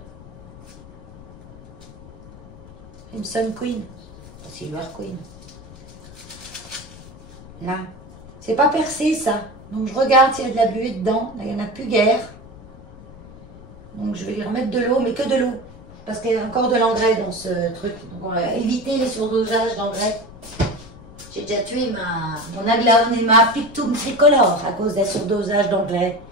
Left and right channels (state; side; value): noise; left; rumble, 19 dB below the sound